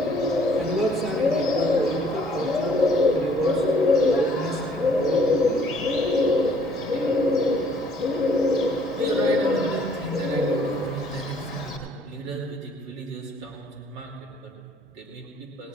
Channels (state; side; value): normal; both; correlation 0.61